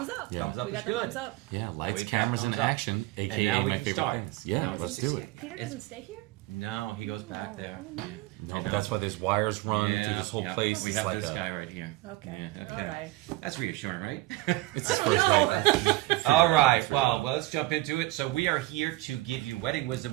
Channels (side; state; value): left; quieter; 18.7 dB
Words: Thumbs up. Yeah. Thumbs up We is got the good. thumbs up. Yeah, Now lights, we've got cameras, and thumbs up. action. AKA And now we my can favorite start. things. Yeah, Now let's let's do just- it. Peter doesn't stay here? No, he goes back there. No, but that's why there's wires run through this whole place. We It's have like this a- guy right here. Okay. Yeah, All right. That's reassuring, right? It's his first night. All right. Well, let's jump into it. So we are here to give you wedding wisdom